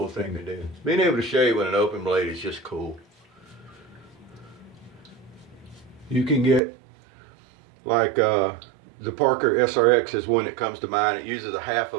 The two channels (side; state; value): left; drops out; at 6.6 s